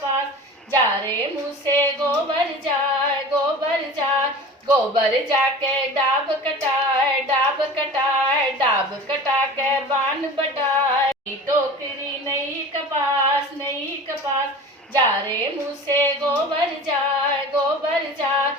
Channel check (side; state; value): both; normal; correlation 0.37